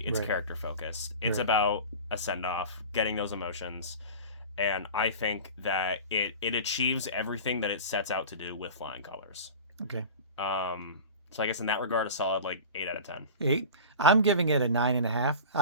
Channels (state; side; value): inverted; both; correlation -0.34